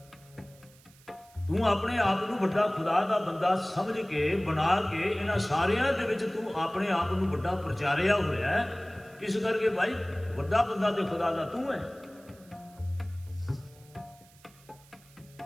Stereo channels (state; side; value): noise; right; hiss, 27 dB below the sound